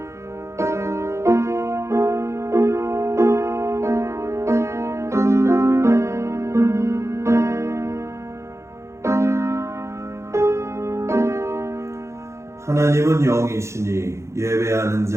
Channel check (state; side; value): late; left; 0.14 ms